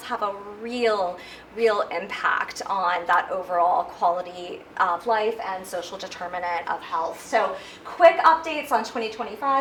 have a real impact on that overall quality of life and social determinant of health. So quick updates on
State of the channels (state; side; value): identical; both; correlation 1.00